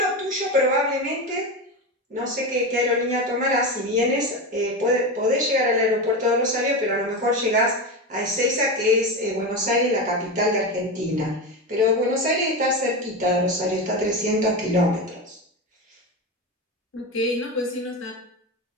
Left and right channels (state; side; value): normal; both; correlation 0.19